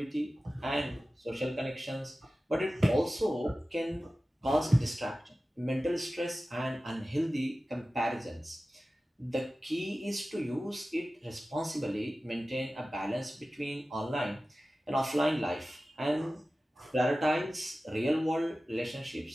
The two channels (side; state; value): both; normal; correlation 0.96